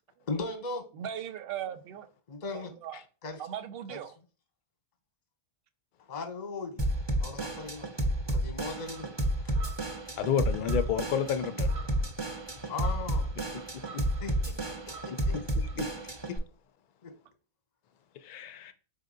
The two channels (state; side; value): late; right; 1.2 ms